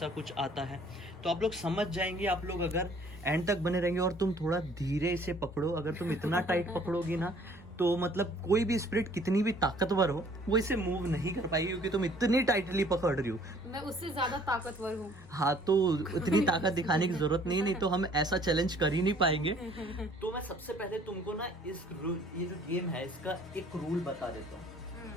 कुछ आता है। तो आप लोग समझ जाएंगे। आप लोग अगर एंड तक बने रहेंगे और तुम थोड़ा धीरे इसे पकड़ो, अगर तुम इतना टाइट पकड़ोगी ना तो मतलब कोई भी स्पिरिट कितनी भी ताकतवर हो वो इसे मूव नहीं कर पाएगी, क्योंकि तुम इतनी टाइटली पकड़ रही हो। मैं उससे ज्यादा ताकतवर हूँ। हाँ, तो इतनी ताकत दिखाने की जरूरत नहीं तो हम ऐसा चैलेंज कर ही नहीं पाएंगे। तो मैं सबसे पहले तुमको ना ये जो गेम है इसका एक रूल बता देता हूँ।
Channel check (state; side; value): normal; both; correlation 0.57